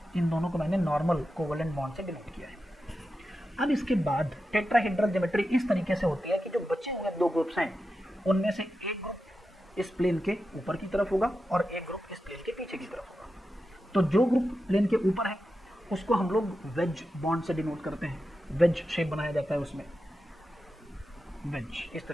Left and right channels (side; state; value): both; normal; correlation 0.90